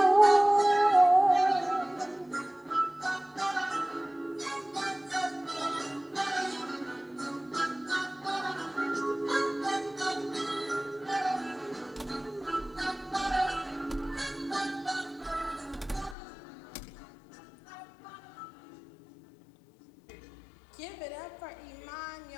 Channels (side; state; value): right; drops out; at 16.2 s